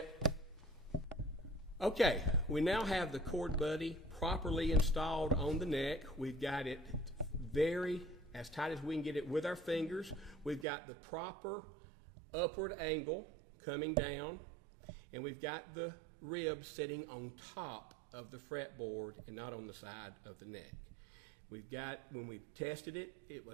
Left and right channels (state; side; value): drops out; left; at 10.7 s